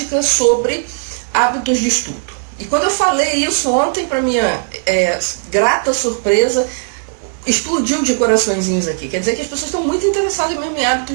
sobre hábitos de estudo. E quando eu falei isso ontem, para minha grata surpresa, explodiu de coraçõezinhos aqui. Quer dizer que as pessoas estão muito interessadas mesmo em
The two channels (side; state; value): left; silent; digital silence